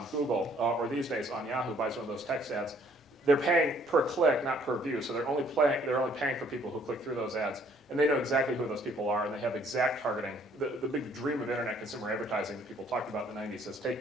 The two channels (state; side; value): normal; both; correlation 0.62